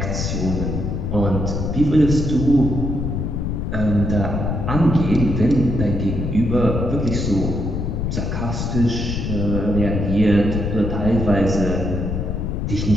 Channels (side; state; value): left; noise; rumble, 2 dB below the sound